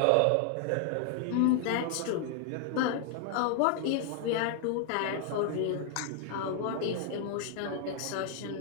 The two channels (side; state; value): both; different; correlation 0.00